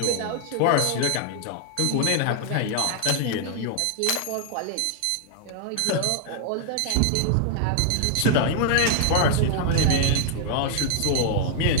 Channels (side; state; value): both; different; correlation 0.00